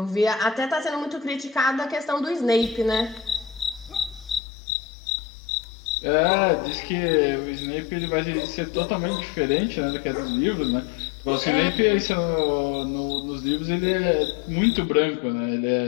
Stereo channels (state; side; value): drops out; right; at 4.4 s